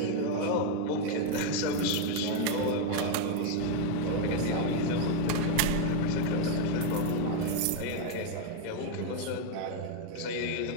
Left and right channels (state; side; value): different; both; correlation 0.01